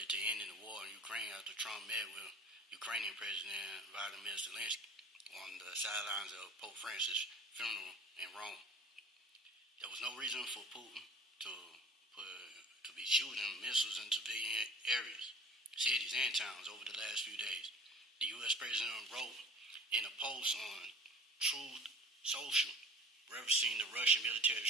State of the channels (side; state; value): both; normal; correlation 0.44